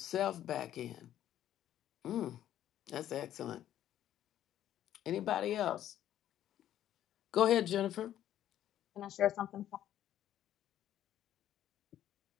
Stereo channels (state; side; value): quieter; right; 11.7 dB